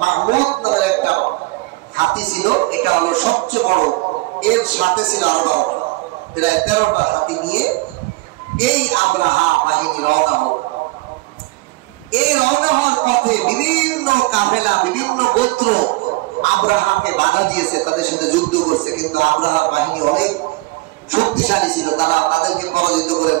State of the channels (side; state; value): left; quieter; 22.5 dB